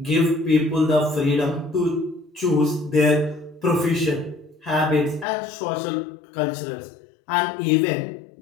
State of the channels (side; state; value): right; drops out; at 5.2 s